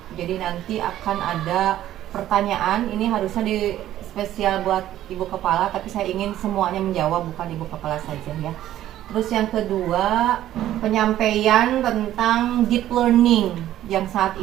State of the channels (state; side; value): quieter; left; 12.9 dB